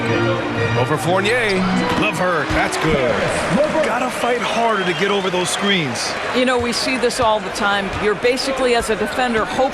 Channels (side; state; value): both; identical; correlation 1.00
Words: Over Fournier. LeVert, that's good. Gotta fight harder to get over those screens. You know, we see this all the time. You're basically, as a defender,